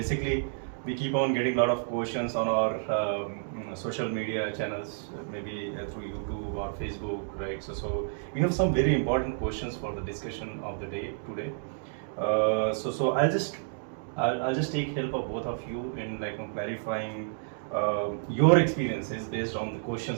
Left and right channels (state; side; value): silent; left; digital silence